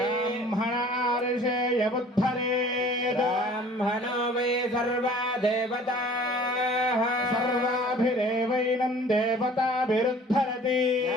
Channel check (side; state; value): both; normal; correlation 0.49